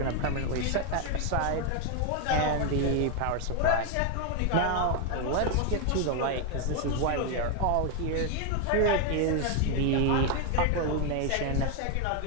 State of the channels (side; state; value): both; different; correlation 0.01